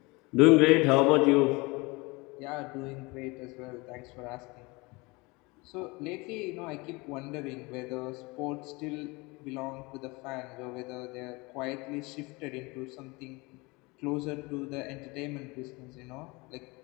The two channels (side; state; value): right; quieter; 25.3 dB